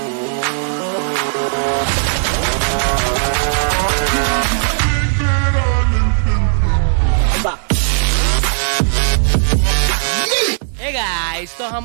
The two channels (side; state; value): left; silent; 65 dB below the other